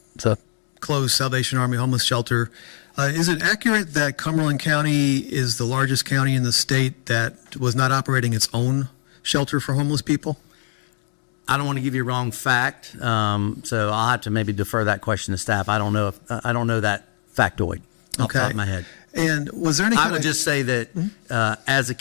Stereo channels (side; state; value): right; silent; 64 dB below the other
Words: closed Salvation Army homeless shelter, is it accurate that Cumberland County is the largest county in the state that was not operating its own shelter for homeless people? I don't want to give you a wrong fact, so I'll have to maybe defer that question to staff. I don't know that factoid off the top of my head. And was there any I kind would of, just say that as a